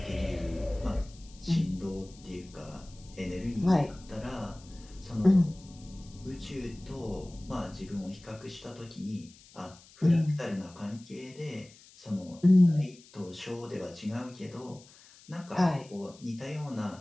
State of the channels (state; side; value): noise; left; hiss, 23 dB below the sound